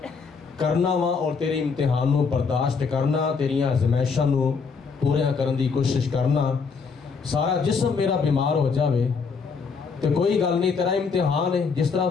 کرنا وا اور تیرے امتحان نو برداشت کرنا، تیریاں آزمائشاں نو پورا کرن دی کوشش کرنا، سارا جسم میرا بیمار ہو جاوے تو کوئی گل نہیں، تیرا امتحان ہے، جس طرح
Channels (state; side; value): quieter; right; 5.3 dB